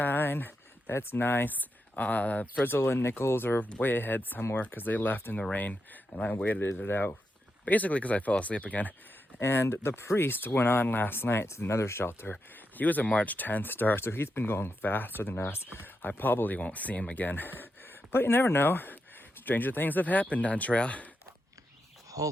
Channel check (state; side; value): normal; both; correlation 0.85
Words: That's nice. Frizzle and Nichols are way ahead somewhere because they left in the rain, and I waited it out. Basically because I fell asleep again. And the priest went on last night to another shelter. He was a March 10th start, so he's been going faster than us. I probably won't see him again. But you never know. Stranger things have happened on trail.